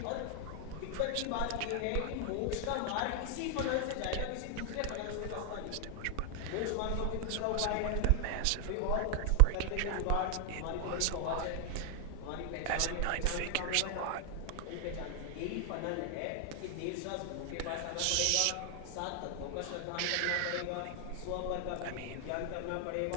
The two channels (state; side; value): different; both; correlation 0.00